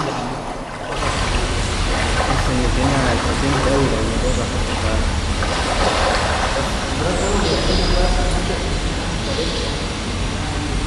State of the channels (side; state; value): both; identical; correlation 1.00